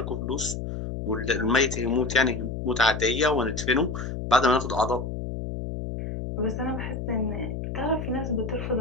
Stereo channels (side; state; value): left; noise; hum, 5 dB below the sound